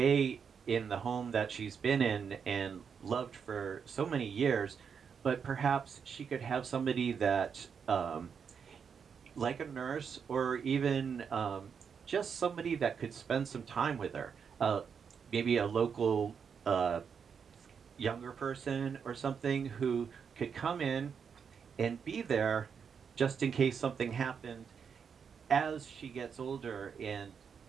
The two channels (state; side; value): quieter; left; 6.7 dB